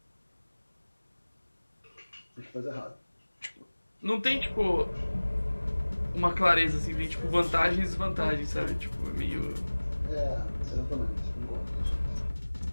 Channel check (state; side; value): inverted; both; correlation -1.00